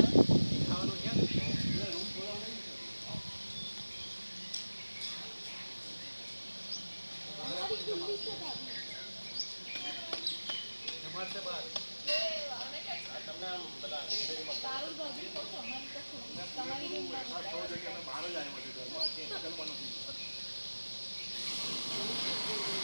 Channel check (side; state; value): both; inverted; correlation -1.00